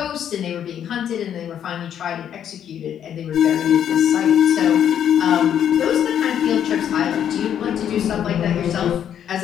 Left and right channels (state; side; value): quieter; right; 9.5 dB